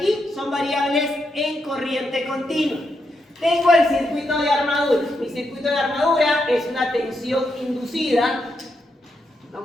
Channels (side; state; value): both; normal; correlation 0.82